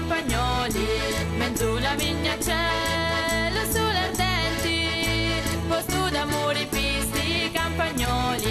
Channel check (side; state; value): both; identical; correlation 1.00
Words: Mezzo la vigna cielo sulle ardenti, posto d'amore pisti